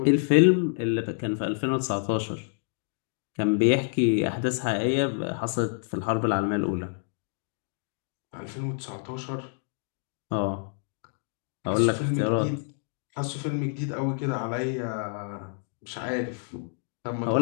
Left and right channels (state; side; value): silent; right; 56 dB below the other